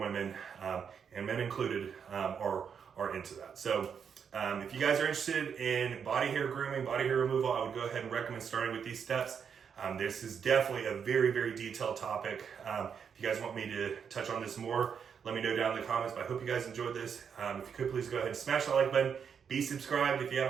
and men included, are into that. So if you guys are interested in body hair grooming, body hair removal, I would go ahead and recommend starting with these steps. This is definitely a very detailed topic. If you guys want me to touch on this more, let me know down in the comments. But I hope you guys enjoyed this. If you could, please go ahead and smash that like button. Be subscribed if you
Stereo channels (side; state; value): left; quieter; 7.0 dB